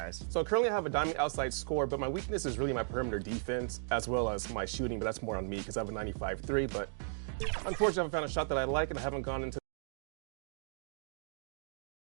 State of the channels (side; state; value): left; silent; digital silence